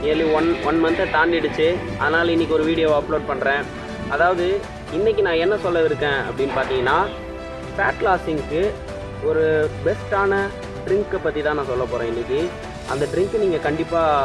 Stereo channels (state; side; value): identical; both; correlation 1.00